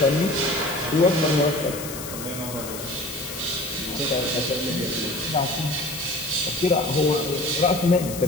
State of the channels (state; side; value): noise; left; hiss, 10 dB below the sound